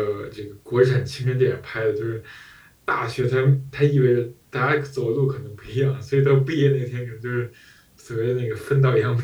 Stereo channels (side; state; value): both; identical; correlation 1.00